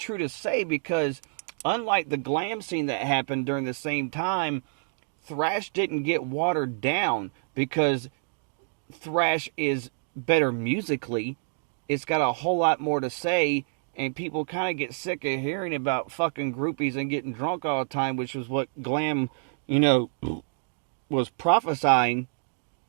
to say, because unlike the glam scene that happened during the same time, thrash didn't get watered down, because thrash is better musically. It's got a whole lot more to say, and people kind of get sick of hearing about fucking groupies and getting drunk all the time, which was what glam, was prophesying.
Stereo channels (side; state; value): left; silent; digital silence